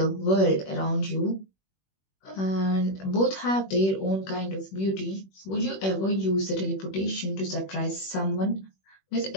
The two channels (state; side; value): late; right; 21 ms